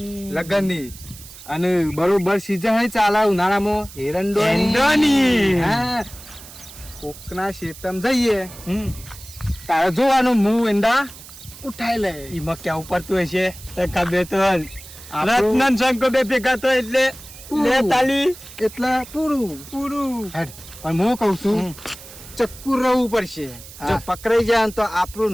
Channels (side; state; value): right; noise; hiss, 17 dB below the sound